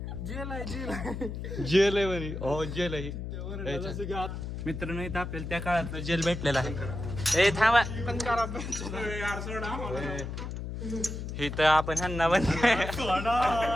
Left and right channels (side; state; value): left; noise; hum, 6 dB below the sound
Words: जेल आहे जेल आहे. जेल आहे म्हणे. हो जेल आहे. मित्रांनो इथं आपल्याला त्या काळातलं जेल भेटलेलं आहे. ए थांबा. यार सोड आम्हाला. इथं आपण ह्यांना बंद